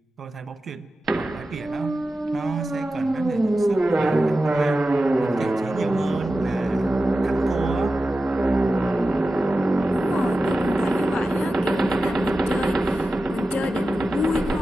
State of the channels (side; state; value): both; normal; correlation 0.93